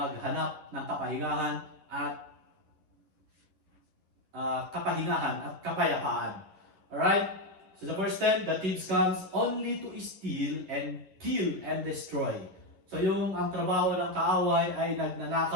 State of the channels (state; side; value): late; left; 11 ms